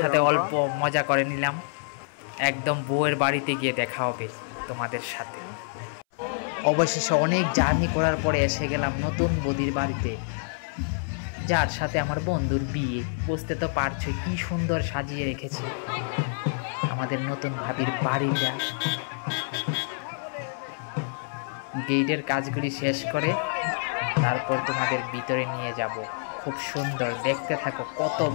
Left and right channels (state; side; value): silent; right; 60 dB below the other